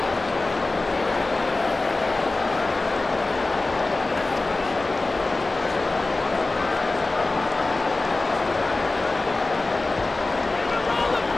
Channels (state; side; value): quieter; right; 3.2 dB